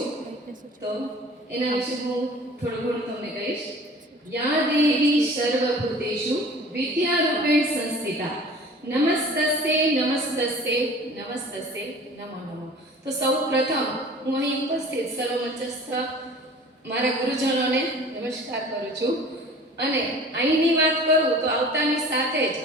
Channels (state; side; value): normal; both; correlation 0.44